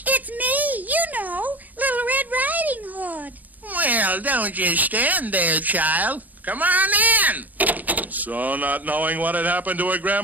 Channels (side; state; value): left; late; 0.081 ms